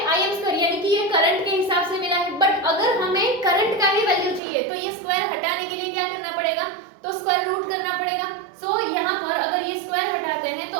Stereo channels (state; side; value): drops out; left; at 4.4 s